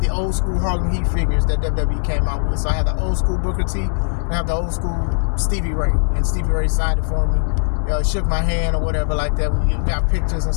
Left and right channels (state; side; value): silent; right; 66 dB below the other